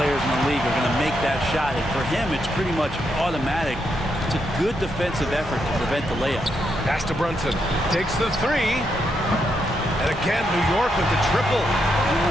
in the league are going to make that shot, and for him, it's pretty much automatic. It's a good defensive effort to prevent the layup. Pass to Brunson. Takes the 3. And again, New York with the triple. I don't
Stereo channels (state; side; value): normal; both; correlation 0.80